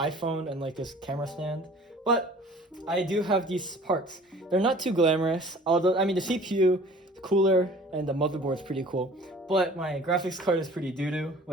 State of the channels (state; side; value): normal; both; correlation 0.48